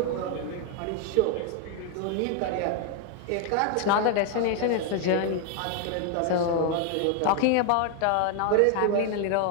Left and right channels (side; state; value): both; different; correlation 0.00